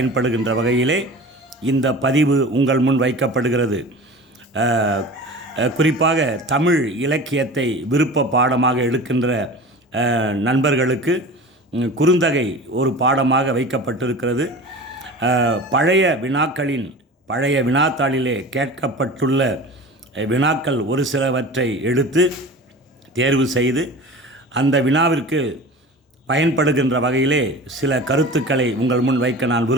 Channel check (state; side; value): normal; both; correlation 0.36